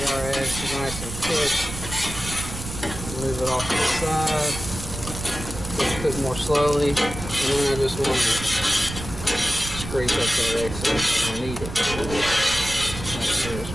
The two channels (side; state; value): right; noise; rumble, 9 dB below the sound